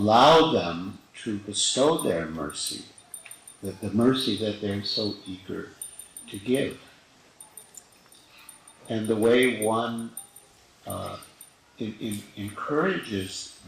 them to bestow their mercy, the mercy that they're so eager to give. And the way one encourages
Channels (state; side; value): identical; both; correlation 1.00